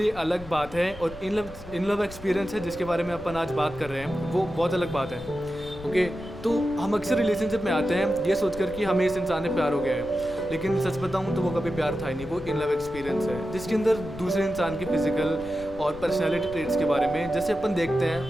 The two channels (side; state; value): left; noise; rumble, 16 dB below the sound